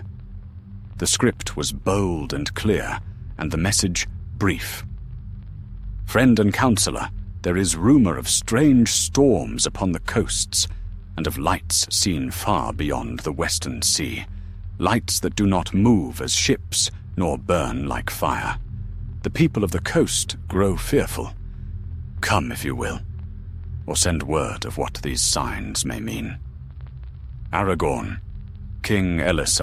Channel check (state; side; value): identical; both; correlation 1.00